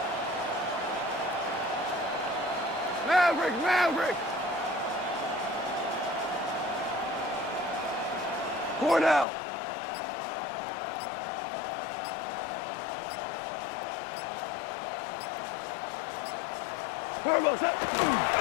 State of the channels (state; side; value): drops out; right; at 9.2 s